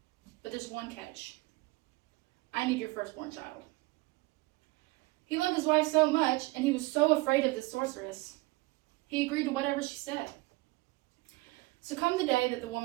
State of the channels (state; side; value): quieter; left; 22.5 dB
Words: but there's one catch. I need your firstborn child." He loved his wife so much, and he was so afraid of the sorceress, he agreed to whatever she said. So come the day that the